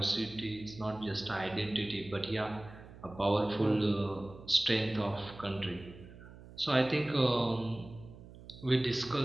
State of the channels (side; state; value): right; noise; hum, 18 dB below the sound